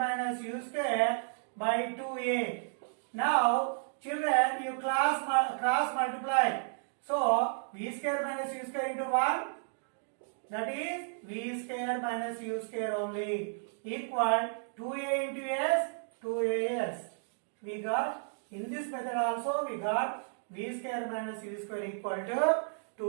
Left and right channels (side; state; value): left; silent; digital silence